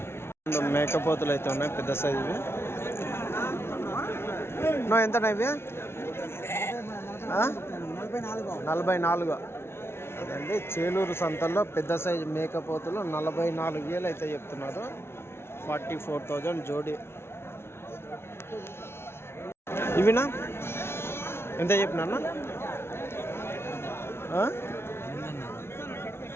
మేకపోతులు అయితే ఉన్నాయి పెద్ద సైజువి. ఎంతనా ఇవి? 44. అదండి, చేలూరు సంతల్లో పెద్ద సైజు మేకపోతులు 44,000 అయితే చెప్తున్నారు. 44,000 జోడి. ఇవినా ఎంత చెప్పినా?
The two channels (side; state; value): right; late; 0.12 ms